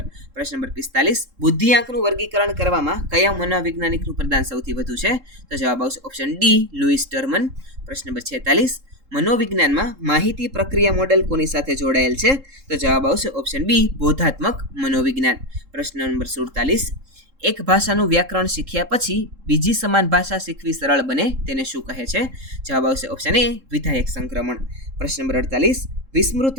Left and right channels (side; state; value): left; late; 3.7 ms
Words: પ્રશ્ન નંબર 45, બુદ્ધિઆંકનું વર્ગીકરણ કરવામાં કયા મનોવૈજ્ઞાનિકનું પ્રદાન સૌથી વધુ છે? તો જવાબ આવશે ઓપ્શન ડી લુઈસ ટર્મન. પ્રશ્ન નંબર 46, મનોવિજ્ઞાનમાં માહિતી પ્રક્રિયા મોડેલ કોની સાથે જોડાયેલ છે? તો જવાબ આવશે ઓપ્શન બી બોધાત્મક મનોવિજ્ઞાન. પ્રશ્ન નંબર 47, એક ભાષાનું વ્યાકરણ શીખ્યા પછી બીજી સમાન ભાષા શીખવી સરળ બને તેને શું કહે છે? જવાબ આવશે ઓપ્શન એ વિધાયક સંક્રમણ. પ્રશ્ન નંબર 48,